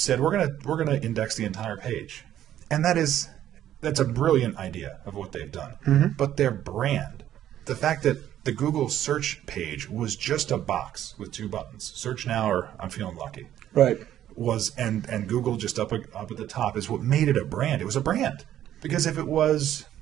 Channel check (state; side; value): quieter; left; 11.6 dB